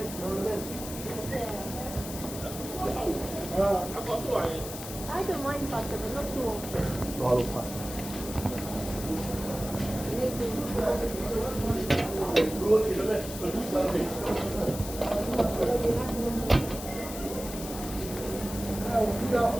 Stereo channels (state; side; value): noise; left; hiss, 10 dB below the sound